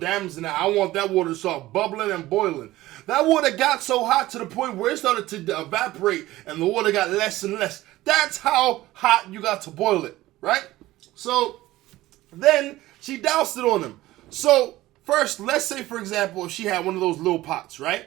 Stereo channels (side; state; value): left; quieter; 16.8 dB